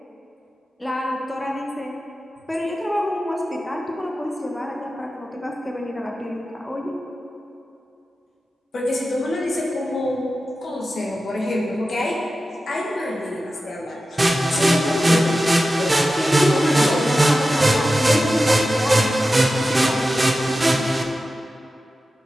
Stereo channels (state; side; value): normal; both; correlation 0.93